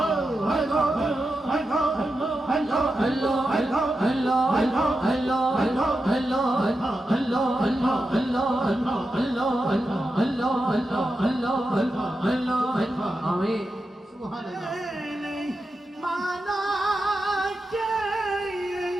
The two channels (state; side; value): normal; both; correlation 0.89